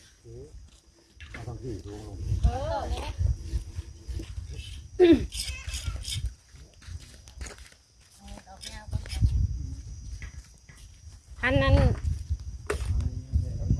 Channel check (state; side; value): identical; both; correlation 1.00